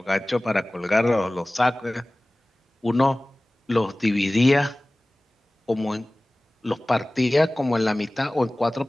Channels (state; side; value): normal; both; correlation 0.98